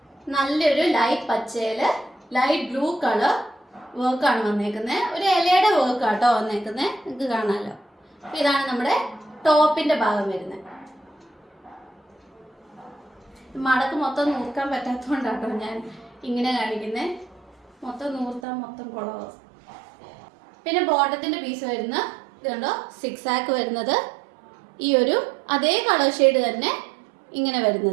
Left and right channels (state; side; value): drops out; left; at 18.4 s